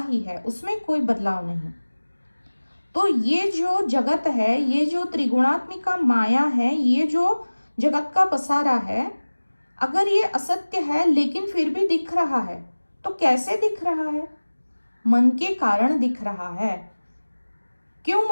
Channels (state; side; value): inverted; both; correlation -1.00